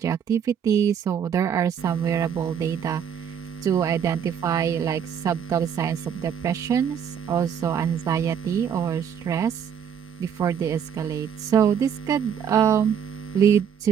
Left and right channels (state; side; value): quieter; left; 8.1 dB